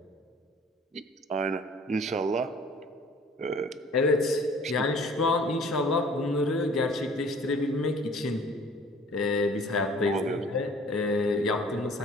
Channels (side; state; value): both; normal; correlation 0.51